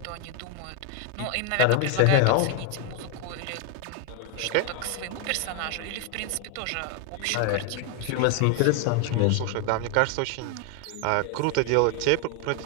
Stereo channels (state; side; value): different; both; correlation 0.01